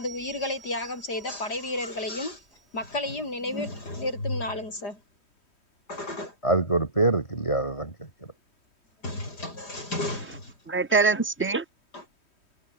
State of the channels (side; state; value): right; late; 3.1 ms